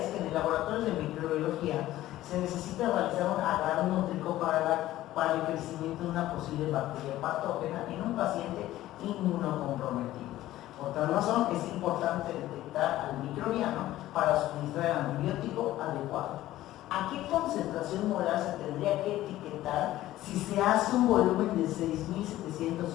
que en el laboratorio de microbiología se necesita realizar un agarnótrico para el crecimiento de una posible bacteria patógena en un paciente inmunocomprometido. Por tal razón, es importante detectar al microbiano para suministrar el antibiótico adecuado. ¿A qué concentración molar se tendría que etiquetar si se hace un volumen de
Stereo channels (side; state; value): right; quieter; 14.9 dB